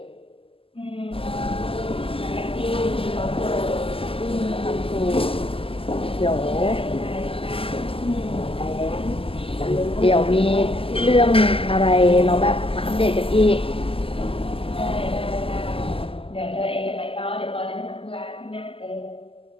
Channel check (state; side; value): late; right; 0.26 ms